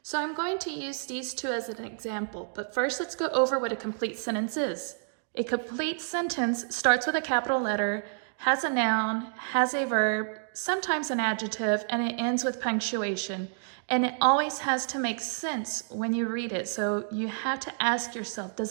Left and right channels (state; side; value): silent; left; digital silence